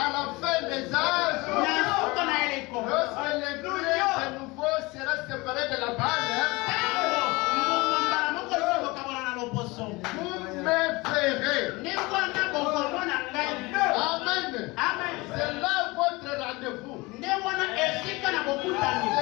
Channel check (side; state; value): right; quieter; 23.5 dB